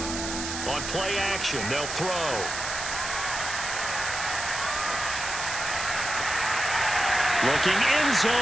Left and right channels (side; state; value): right; noise; hiss, 5 dB below the sound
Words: On play action, they'll throw. Looking end